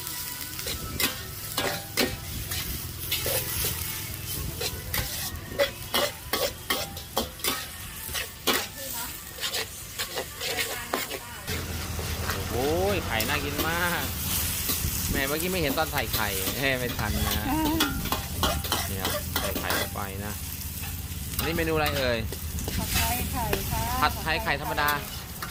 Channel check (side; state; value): both; identical; correlation 1.00